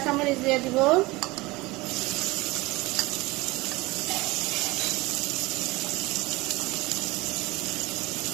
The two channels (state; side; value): quieter; left; 21.8 dB